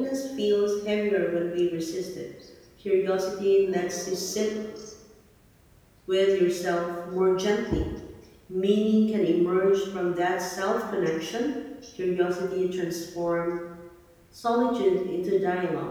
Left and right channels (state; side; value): identical; both; correlation 1.00